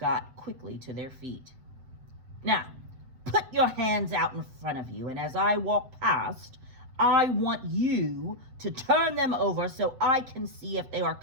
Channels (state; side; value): late; left; 7.8 ms